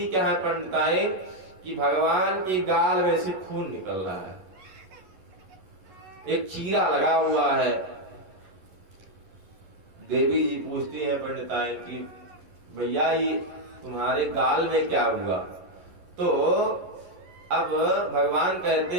क्या है पंडिताइन कि भगवान की गाल में से खून निकल रहा है, एक चीरा लगा हुआ है। देवी जी पूछती है पंडिताइन की भैया ये तुम्हारे गाल में क्या हुआ। तो अब भगवान कहते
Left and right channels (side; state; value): left; late; 11 ms